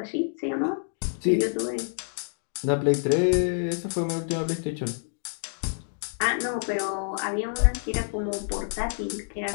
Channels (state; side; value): silent; right; digital silence